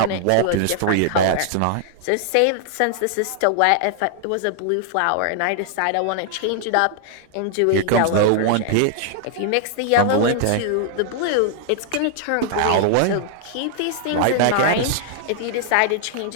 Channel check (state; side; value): different; both; correlation 0.00